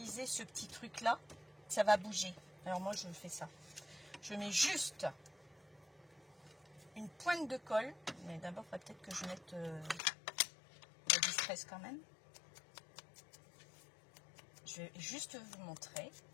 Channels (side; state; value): right; drops out; at 10.0 s